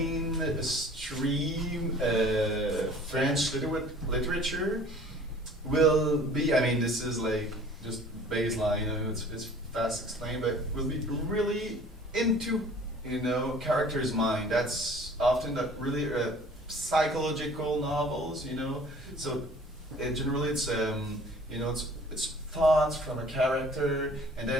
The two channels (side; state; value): both; normal; correlation 0.49